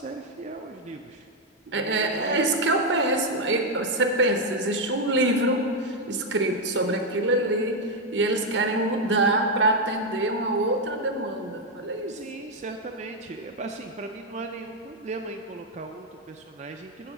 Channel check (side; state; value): both; normal; correlation 0.03